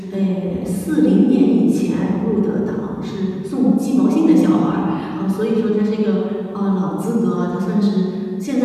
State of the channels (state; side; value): identical; both; correlation 1.00